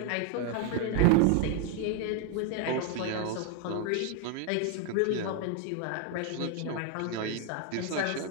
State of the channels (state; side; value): different; both; correlation 0.00